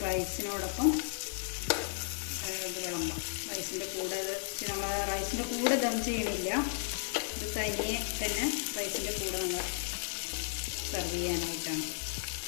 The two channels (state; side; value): silent; right; digital silence